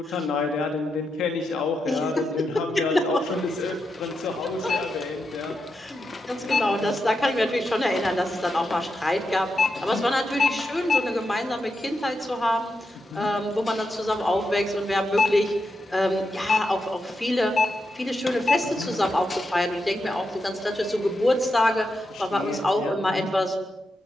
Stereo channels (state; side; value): normal; both; correlation 0.86